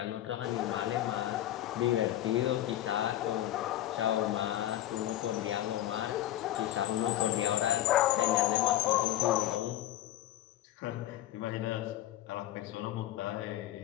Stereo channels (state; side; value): quieter; right; 13.5 dB